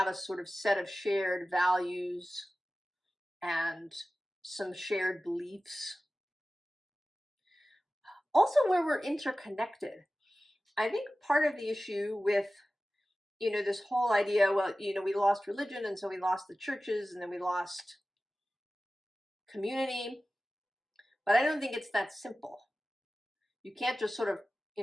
a sort of set of shared values and some shared beliefs. Also where we're interconnected. I think part of the issue with, you know, this whole idea, well, you know, we lost religion, and so we lost the churches, and then we lost community. But I don't think it's that simple. You can't just sort of, you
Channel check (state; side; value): normal; both; correlation 0.96